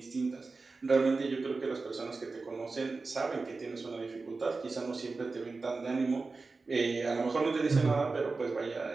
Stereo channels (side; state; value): left; quieter; 3.9 dB